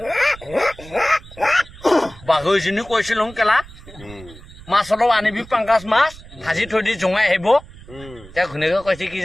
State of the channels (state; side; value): noise; right; rumble, 19 dB below the sound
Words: बागो जनी কৈছিলং কেলা মাছলো আনিবি পাঙ্গাস মাছ ভাজি থৈ দি জঙাই হেব তে ঘুনেকে কৈছে কি